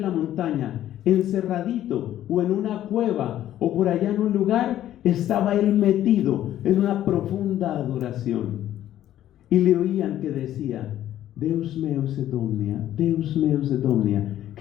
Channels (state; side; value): quieter; right; 12.4 dB